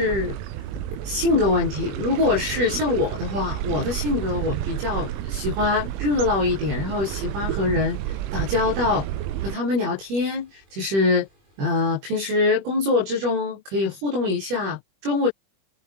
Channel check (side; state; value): left; late; 21 ms